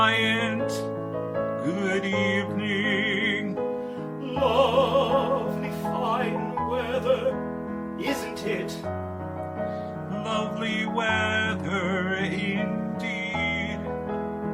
good evening. Lovely fine weather, isn't it? Lovely weather indeed.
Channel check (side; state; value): both; identical; correlation 1.00